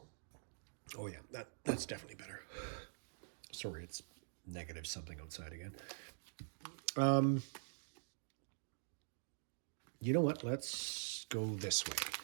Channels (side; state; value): left; silent; digital silence